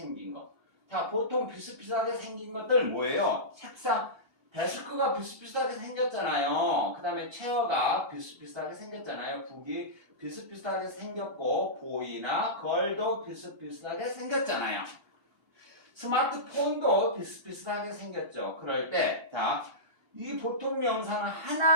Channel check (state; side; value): late; right; 2.8 ms